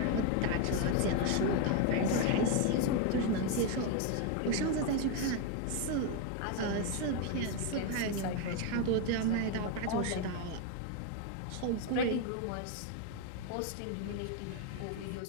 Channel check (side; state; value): both; different; correlation 0.01